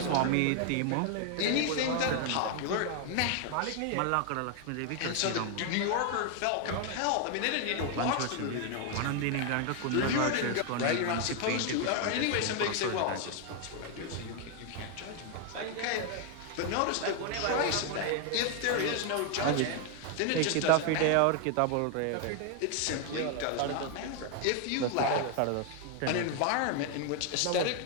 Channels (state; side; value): different; both; correlation 0.00